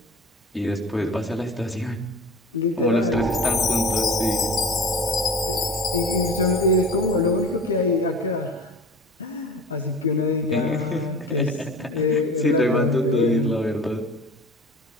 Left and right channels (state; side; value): normal; both; correlation 0.36